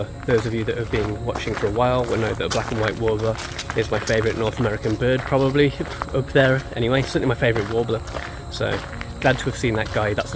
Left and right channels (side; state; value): both; identical; correlation 1.00